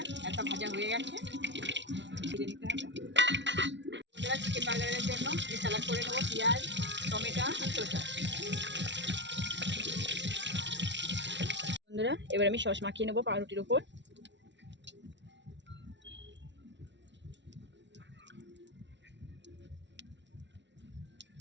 একটা ভাজা হয়ে গেছে, ভেজে নিতে হবে। বন্ধুরা চিকেন বার্গারের জন্য আমি স্যালাড করে নেবো, পেঁয়াজ, টমেটো আর শসা। বন্ধুরা এবার আমি সস মাখিয়ে নেবো পাউরুটির উপর।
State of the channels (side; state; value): left; late; 0.52 ms